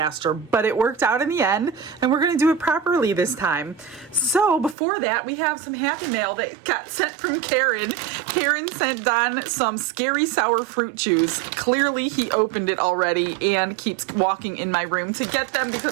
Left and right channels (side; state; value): left; drops out; at 4.8 s